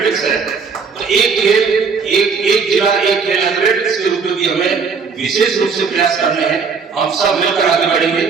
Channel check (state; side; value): quieter; left; 5.4 dB